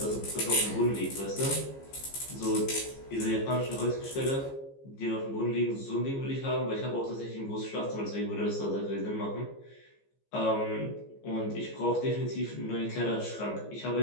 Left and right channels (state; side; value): late; right; 15 ms